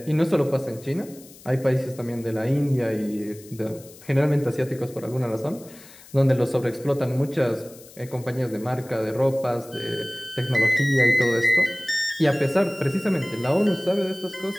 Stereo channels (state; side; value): noise; left; hiss, 21 dB below the sound